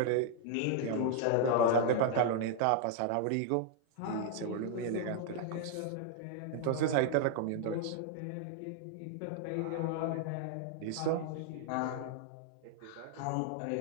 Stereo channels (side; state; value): both; different; correlation 0.00